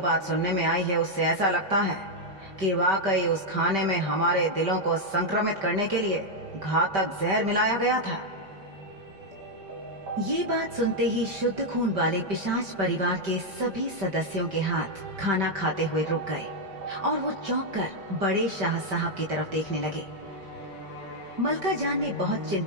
सुनने में आई है उससे ऐसा लगता है कि वाकई उस खाने में हमारे दिलों को संक्रमित करने के लिए घातक जहर मिलाया गया था। ये बात सुनते ही शुद्ध खून वाले पिशाच परिवार के सभी सदस्यों के हाथ खाना खाते हुए रुक गए और वो चौंक कर बड़े शाह साहब की तरफ देखने लगे। मलका जान ने बहुत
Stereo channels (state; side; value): late; left; 5.2 ms